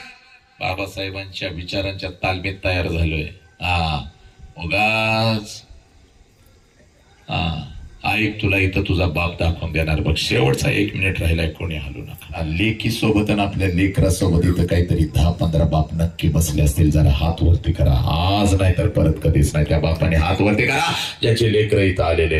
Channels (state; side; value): identical; both; correlation 1.00